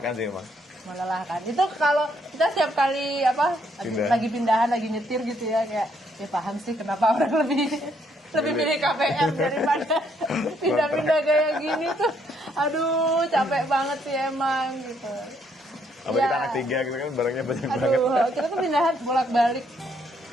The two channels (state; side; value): normal; both; correlation 0.71